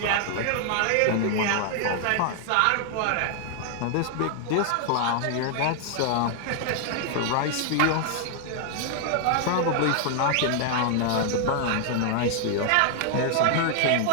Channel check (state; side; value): different; both; correlation 0.00